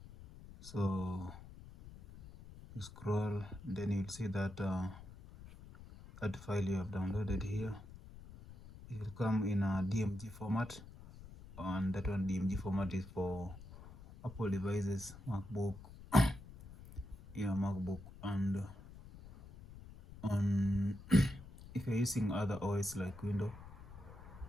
So you scroll, then you'll see that that file you have downloaded here, it will come in a DMG format, and that one DMG format is for Apple devices, MacBook, MacBook, and on if you're using other OS like Windows,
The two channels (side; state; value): left; noise; rumble, 16 dB below the sound